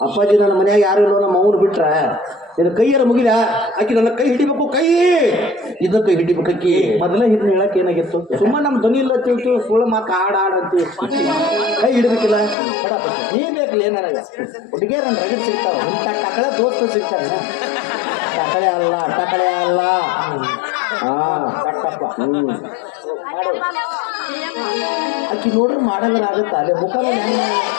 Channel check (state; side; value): drops out; right; at 12.6 s